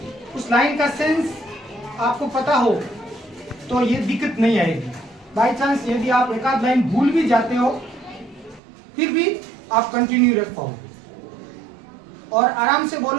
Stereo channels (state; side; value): drops out; left; at 8.6 s